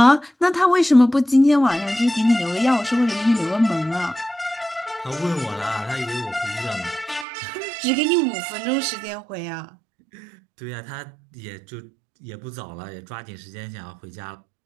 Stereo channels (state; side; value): drops out; left; at 7.2 s